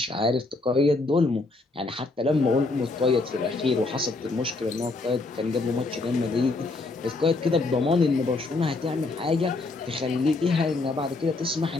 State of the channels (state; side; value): quieter; right; 3.4 dB